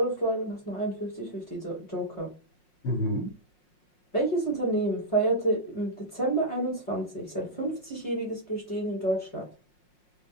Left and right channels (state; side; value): late; right; 5.5 ms